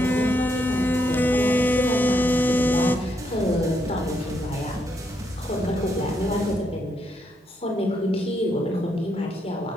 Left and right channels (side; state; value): both; normal; correlation 0.77